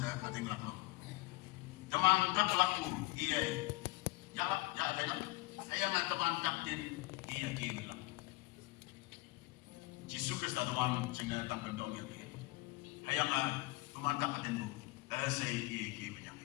ating laklo. Damang tak laku iya ya bay lang. Hayang na damang tak din iya ki lang. Jesus Kristus damang cina tak bendong ya ki. Hayang na damang tak atin mo say iya ki banyang.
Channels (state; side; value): quieter; right; 22.2 dB